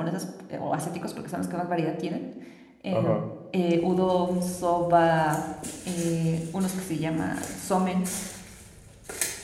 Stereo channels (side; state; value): both; identical; correlation 1.00